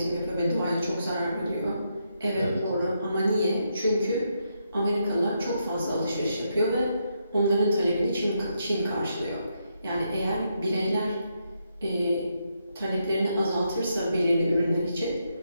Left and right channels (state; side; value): inverted; both; correlation -0.80